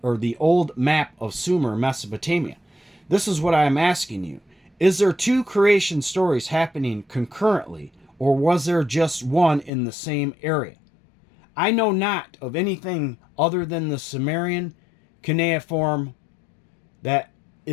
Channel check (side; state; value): right; drops out; at 9.7 s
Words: or the old map of Sumer, Mesopotamia. This is what I am asking you. Is there two creation stories happening concurrently, or was there just one in the same area? I know not of anything other than the Sumerian cuneiform that